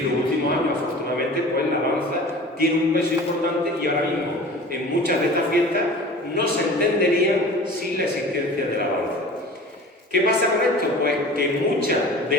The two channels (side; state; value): both; normal; correlation 0.40